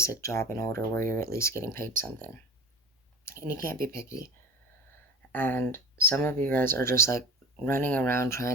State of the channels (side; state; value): both; normal; correlation 0.36